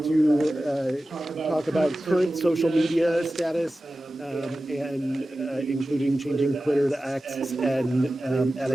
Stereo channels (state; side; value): normal; both; correlation 0.95